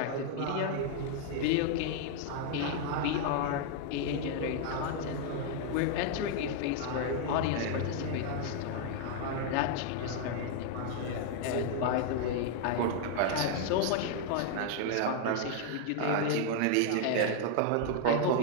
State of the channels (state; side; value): different; both; correlation 0.00